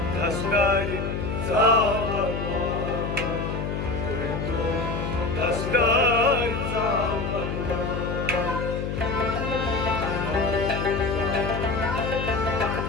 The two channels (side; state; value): left; noise; hum, 3 dB below the sound